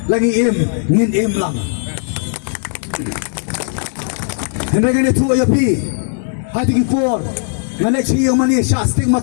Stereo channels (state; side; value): silent; right; 68 dB below the other